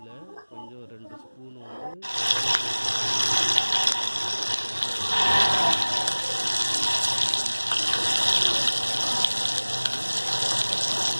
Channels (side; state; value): both; inverted; correlation -1.00